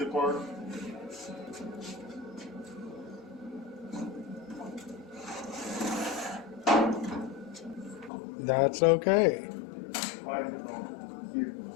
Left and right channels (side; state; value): right; drops out; at 8.1 s